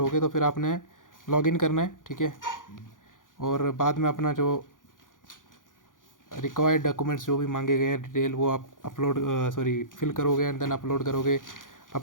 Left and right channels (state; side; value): late; right; 0.88 ms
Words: तो फिर आपने लॉगिन करना है, ठीक है, और बाद में अपना जो रिक्वायर्ड डॉक्यूमेंट्स जो भी मांगे गए हैं डिटेल, वो आप फिल करोगे, एंड देन अपलोड करोगे